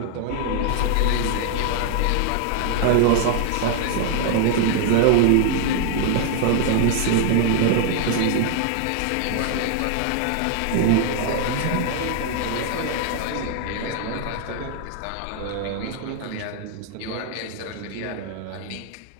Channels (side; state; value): both; different; correlation 0.00